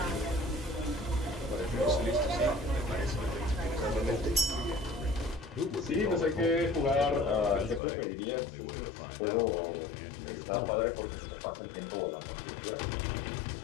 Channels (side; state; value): right; drops out; at 7.8 s